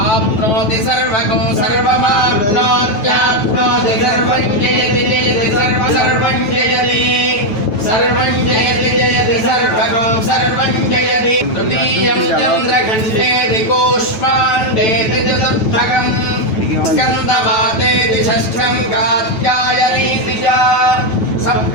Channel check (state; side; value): late; right; 9.2 ms